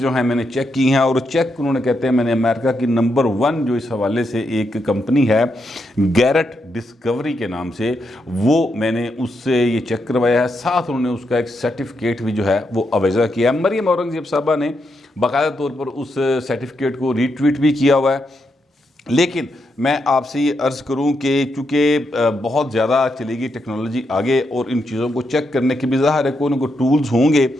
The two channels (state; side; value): normal; both; correlation 0.82